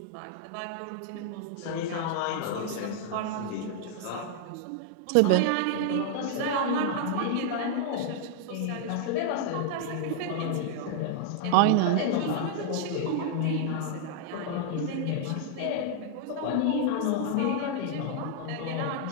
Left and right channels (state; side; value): different; both; correlation -0.01